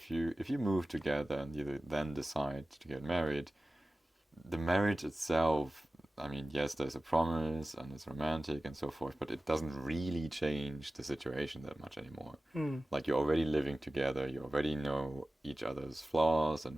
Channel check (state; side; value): normal; both; correlation 0.96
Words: you move together and you then decide to get married, the marriage itself, I mean, yes, there's a promise and it's romantic and so forth, but it doesn't really change the situation that much anymore. Mm. Like you're already living together, you already know each other's flaws